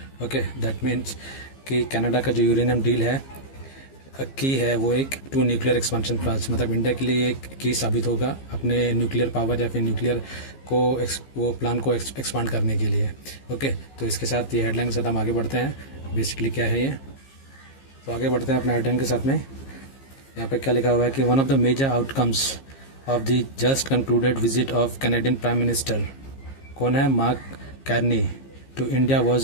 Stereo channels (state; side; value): late; right; 15 ms